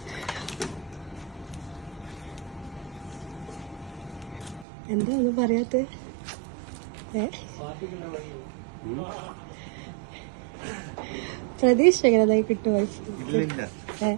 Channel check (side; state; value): left; drops out; at 4.7 s